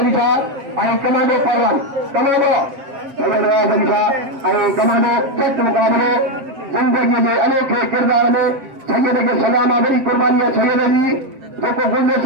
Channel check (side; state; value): left; late; 7.6 ms